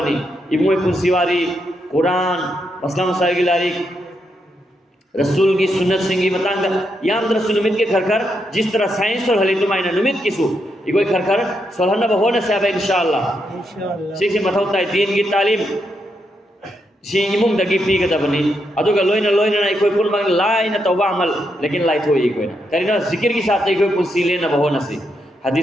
इमोई पुंसीवारी कुरान मसला मसाइल की लारिक रसूल की सुन्नत सिंगी बतांग याम रसूल नुमित के खरखर जिस तरह साइंस और हली तुमाइना नुमित किसु इकोई खरखर सोलहना बहोना सेबा इंशाअल्लाह सीखसी मथौता दीन की तालीम सी इमुंग दगी पीगदा बनी अदुगा लोइना लोइना इकोई पुलमंग लाइना तौबा अमल लेकिन लाई थोई इकोइना करिना जिक्र की साथ इकोई पुलसी लेना बहोना सी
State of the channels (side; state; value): both; normal; correlation 0.81